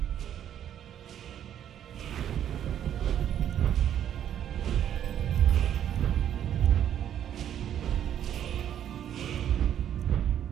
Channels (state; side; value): quieter; left; 10.1 dB